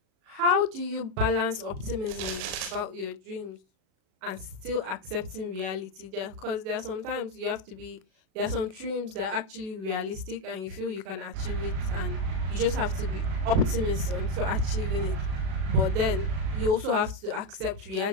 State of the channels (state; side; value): late; left; 37 ms